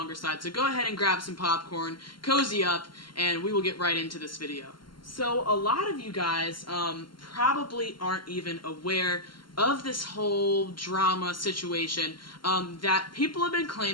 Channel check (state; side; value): late; right; 0.72 ms